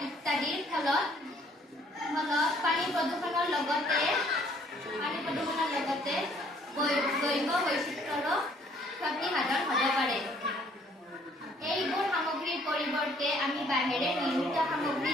ইত্যাদিৰ ফলত পানী প্ৰদূষণৰ লগতে জৈৱ বৈচিত্ৰ্যৰো ক্ষতিসাধন হ'ব পাৰে। এইবোৰ সামগ্ৰীৰ পৰিৱৰ্তে আমি বাঁহেৰে নিৰ্মিত সামগ্ৰী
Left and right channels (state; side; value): normal; both; correlation 0.62